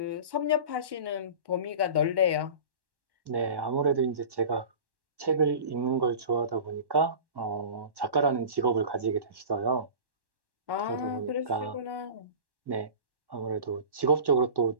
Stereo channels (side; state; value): left; late; 1.1 ms